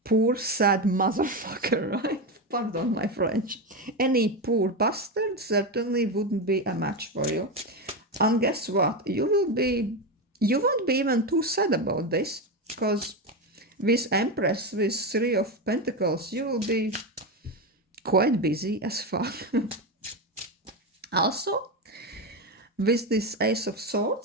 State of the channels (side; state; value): both; normal; correlation 0.14